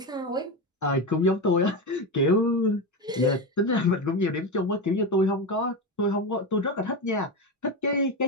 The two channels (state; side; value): normal; both; correlation 0.16